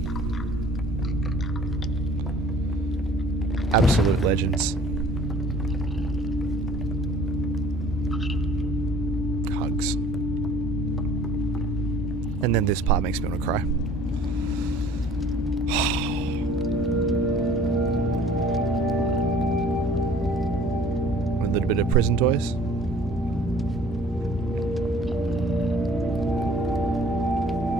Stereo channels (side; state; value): both; normal; correlation 0.52